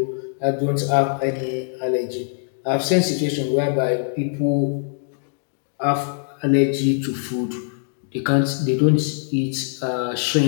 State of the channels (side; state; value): right; silent; digital silence